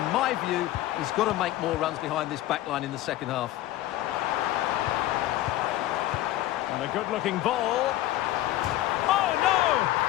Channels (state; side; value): quieter; right; 15.0 dB